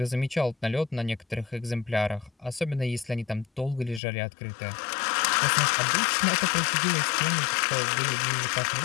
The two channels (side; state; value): right; drops out; at 4.0 s